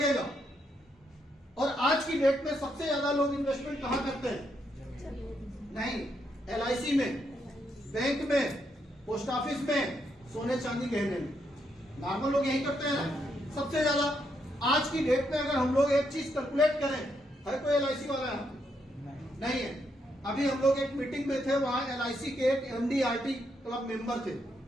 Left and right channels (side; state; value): both; normal; correlation 0.78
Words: और आज की डेट में सबसे ज्यादा लोग इन्वेस्टमेंट कहां करते हैं? नहीं, LIC में, बैंक में, पोस्ट ऑफिस में, सोने चांदी गहने में। नॉर्मल लोग यही करते हैं ना सबसे ज्यादा। आज की डेट में अगर हम लोग एक चीज कैलकुलेट करें, है कोई LIC वाला है? नहीं है। अभी हम लोग एक मीटिंग में थे, वहां LIC के एक MD/RT क्लब मेंबर थे,